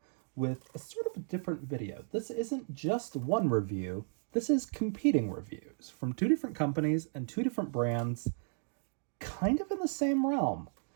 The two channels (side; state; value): left; silent; digital silence